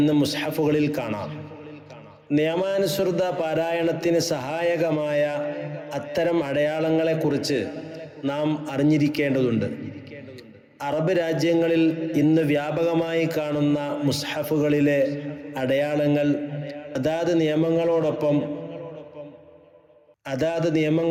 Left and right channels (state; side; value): identical; both; correlation 1.00